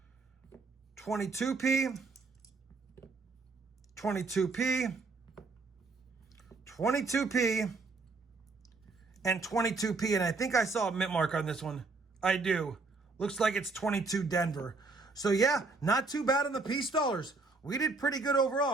22P. 22P. 22P. And 22P, and I think I saw a mint mark on this one. I do. Looks like it's 22 Denver. So yeah, not too bad on the piece dollars. We did pretty good overall.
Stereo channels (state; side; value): quieter; left; 3.8 dB